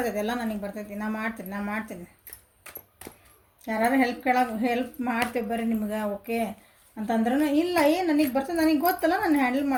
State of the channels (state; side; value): identical; both; correlation 1.00